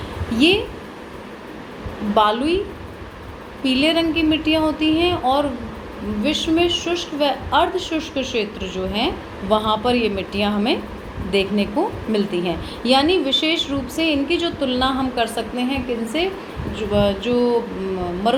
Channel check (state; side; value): identical; both; correlation 1.00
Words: ये बालुई पीले रंग की मिट्टियाँ होती हैं और विश्व में शुष्क व अर्ध शुष्क क्षेत्र जो हैं वहाँ पर ये मिट्टियाँ हमें देखने को मिलती हैं। यानी विशेष रूप से इनकी जो तुलना हम कर सकते हैं किनसे, जो